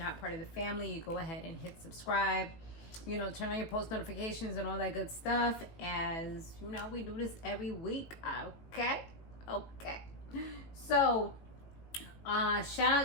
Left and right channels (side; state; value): right; late; 18 ms